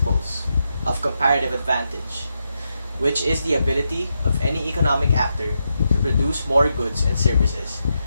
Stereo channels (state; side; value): inverted; both; correlation -0.85